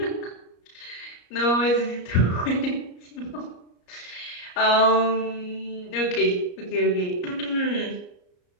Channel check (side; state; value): right; late; 34 ms